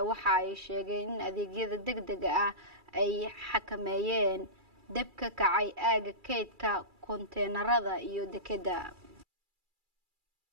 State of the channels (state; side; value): late; left; 2.3 ms